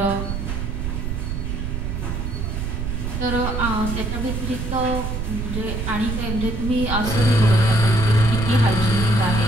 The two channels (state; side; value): noise; right; rumble, 3 dB below the sound